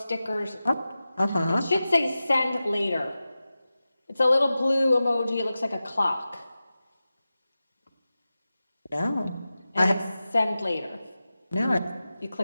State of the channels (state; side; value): inverted; both; correlation -0.94